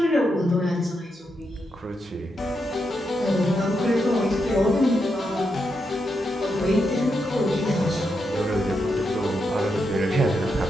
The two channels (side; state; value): both; normal; correlation 0.83